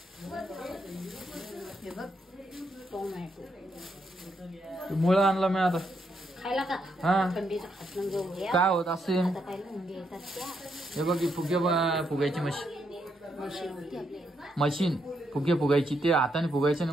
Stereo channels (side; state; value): both; normal; correlation 0.78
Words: हे बघ टोमॅटो. मुळं आणला मी आता. खायला का? हा थंडीचं खात घेऊन घ्या. काय होत असे? आता काय मुंगे येतात त्या. हे बघ फुगायची मशीन. मशीन होती आपल्याला. मशीन फुगायची. ते हाताने फुगायचे ना.